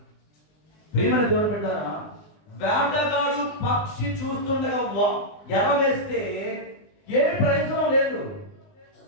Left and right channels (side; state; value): right; late; 20 ms